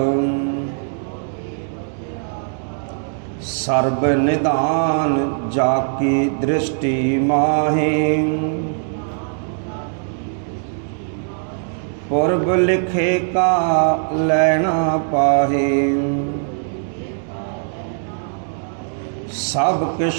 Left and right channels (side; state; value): left; silent; digital silence